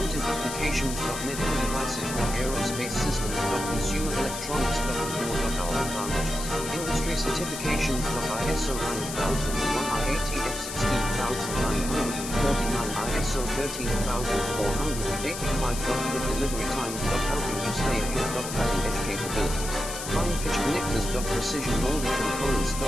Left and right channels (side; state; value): left; noise; hiss, 7 dB below the sound